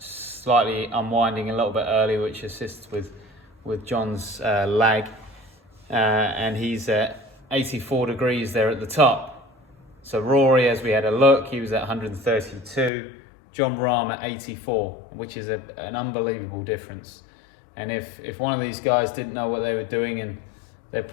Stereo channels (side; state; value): right; drops out; at 12.9 s